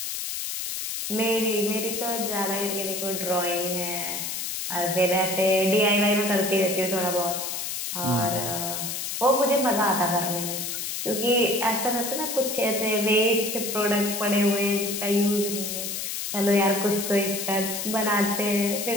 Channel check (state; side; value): noise; left; hiss, 4 dB below the sound